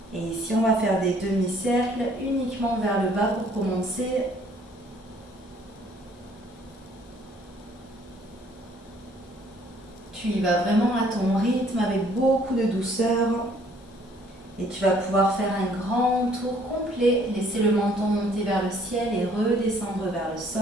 Et ici, on va faire des demi-cercles uniquement vers le bas pour commencer. Tu y vas vraiment à ton rythme avec beaucoup de douceur. Et tu vas pouvoir faire un grand tour complet. Laisser le menton monter vers le ciel et redescendre vers le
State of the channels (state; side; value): normal; both; correlation 0.61